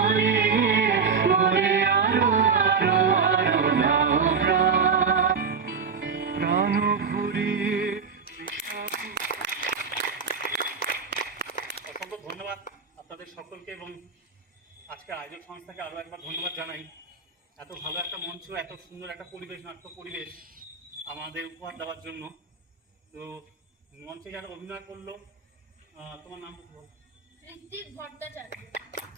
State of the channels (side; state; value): left; quieter; 5.6 dB